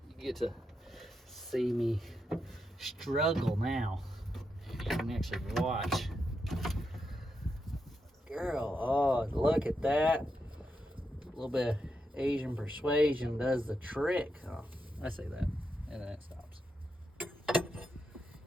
You get to see me struggle now. You can actually watch. Girl, oh, look at that. A little bit of Asian persuasion does the trick. Oh, I say that, and then it stops.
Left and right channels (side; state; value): both; normal; correlation 0.84